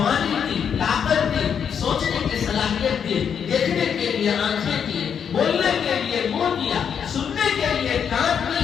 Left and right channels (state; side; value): quieter; right; 7.6 dB